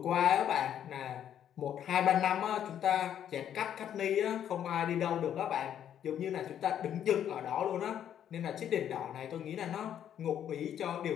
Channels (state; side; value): quieter; right; 9.9 dB